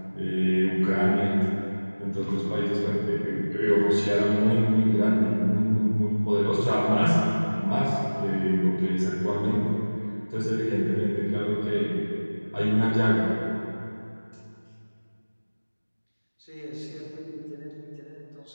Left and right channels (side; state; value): both; inverted; correlation -1.00